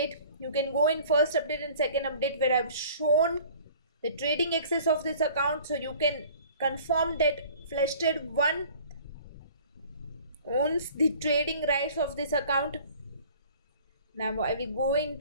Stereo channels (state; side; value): inverted; both; correlation -0.49